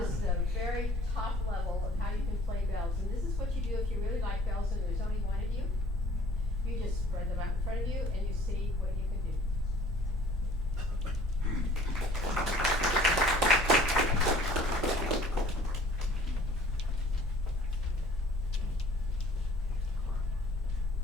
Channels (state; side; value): normal; both; correlation 0.52